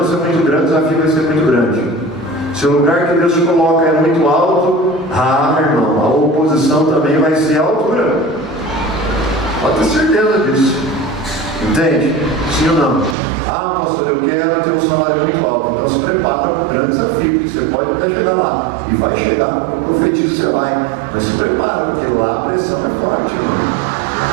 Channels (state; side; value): drops out; left; at 13.2 s